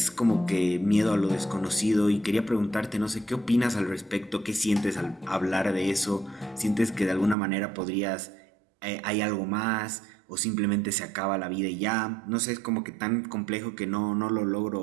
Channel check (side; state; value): left; drops out; at 7.4 s